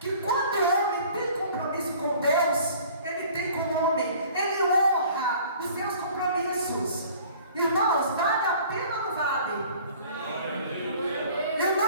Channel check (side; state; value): both; inverted; correlation -0.50